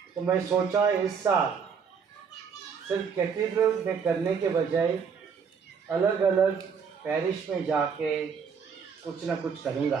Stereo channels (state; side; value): quieter; left; 6.4 dB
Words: तो मैं सोचा इस साल सिर्फ कैथेड्रल में करने के बजाय अलग अलग पैरिश में जाके कुछ ना कुछ करूँगा।